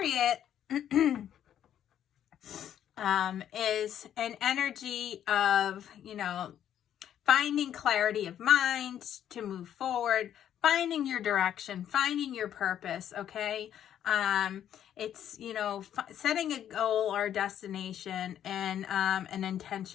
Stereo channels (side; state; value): right; quieter; 10.3 dB